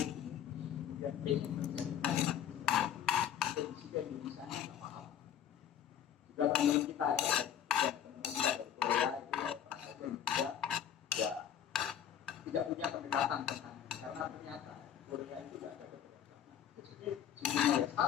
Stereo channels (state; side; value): quieter; right; 9.5 dB